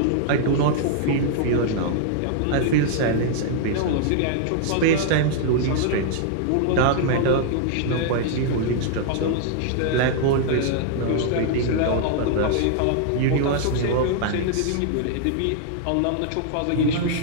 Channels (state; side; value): different; both; correlation -0.01